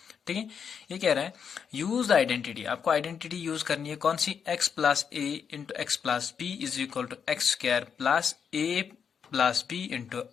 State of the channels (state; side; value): quieter; right; 7.0 dB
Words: ठीक है, ये कह रहा है यूज द आइडेंटिटी। आपको आइडेंटिटी यूज करनी है कौन सी, x plus a into x plus b is equal to x square plus a plus b into